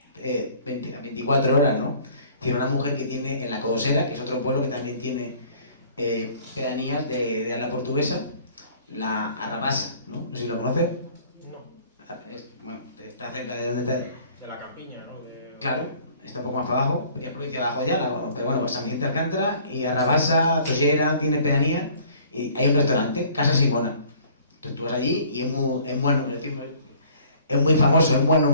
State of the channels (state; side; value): inverted; both; correlation -0.54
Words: 24 horas, ¿no? Tiene una mujer que tiene en la Codosera, que es otro pueblo que también tiene pedanías de habla portuguesa, la Arrabasa, ¿no? No sé si lo conoces. No. Bueno, está cerca de donde está. De la campiña, ¿no? Claro, está un poco más para abajo, es provincia de Abajo pero bueno, San Vicente de Alcántara y Arrabasa, Tollera, tiene pedanía y hay un restaurante, Casa Simona. Entonces tú vas allí y es muy famoso, es muy